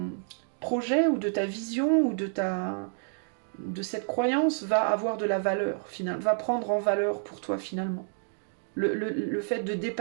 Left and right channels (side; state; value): left; silent; 58 dB below the other